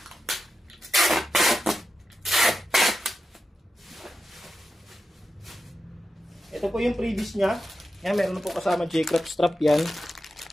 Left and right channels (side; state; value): both; normal; correlation 0.90